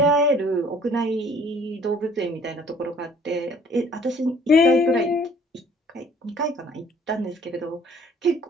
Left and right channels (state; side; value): normal; both; correlation 0.56